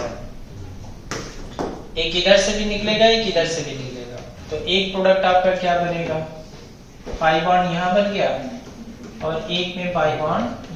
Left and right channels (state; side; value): identical; both; correlation 1.00